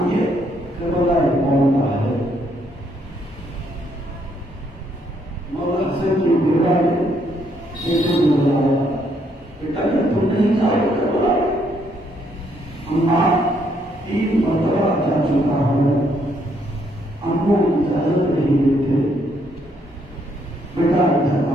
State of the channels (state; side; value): normal; both; correlation 0.72